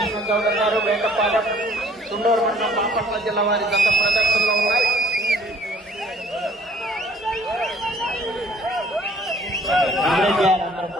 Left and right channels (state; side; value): normal; both; correlation 0.57